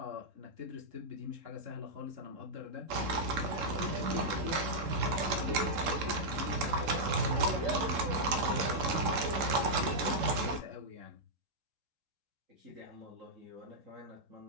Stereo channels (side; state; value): left; late; 3.7 ms